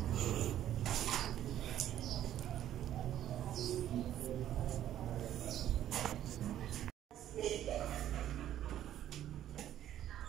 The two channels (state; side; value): quieter; left; 11.7 dB